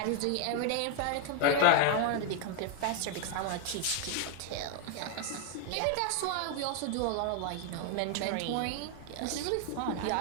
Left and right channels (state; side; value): different; both; correlation 0.00